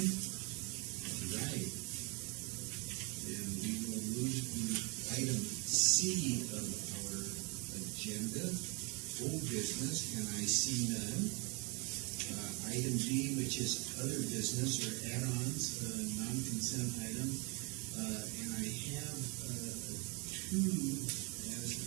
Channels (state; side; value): quieter; left; 30.6 dB